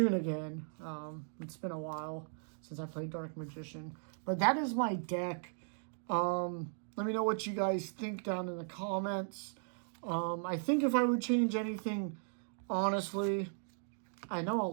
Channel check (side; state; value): left; silent; digital silence